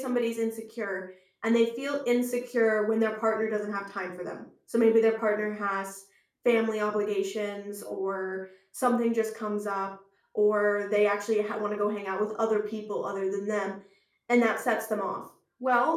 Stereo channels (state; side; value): identical; both; correlation 1.00